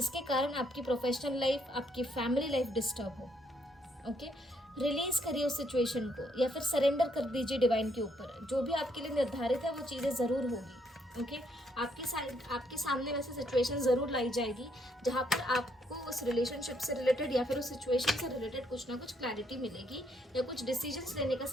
कारण आपकी प्रोफेशनल लाइफ, आपकी फैमिली लाइफ डिस्टर्ब हो, ओके। रिलीज करिए उस सिचुएशन को या फिर सरेंडर कर दीजिए डिवाइन के ऊपर। जो भी आपके लिए निर्धारित है वो चीज़ें ज़रूर होगी, ओके। आपके सामने वैसे सिचुएशन ज़रूर लाई जाएगी जहाँ पर आपको उस रिलेशनशिप से रिलेटेड या फिर उस सिचुएशन से रिलेटेड कुछ ना कुछ क्लैरिटी मिलेगी या कुछ डिसीजंस लेने का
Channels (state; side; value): normal; both; correlation 0.72